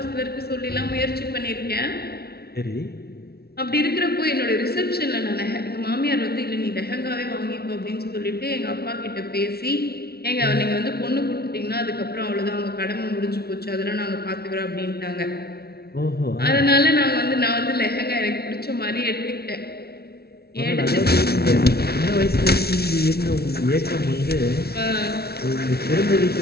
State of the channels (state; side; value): late; right; 0.45 ms